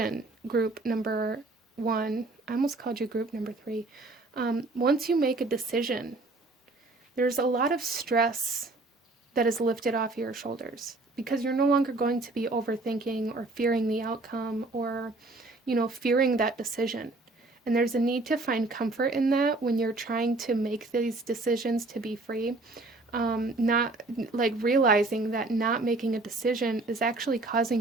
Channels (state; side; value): quieter; left; 3.1 dB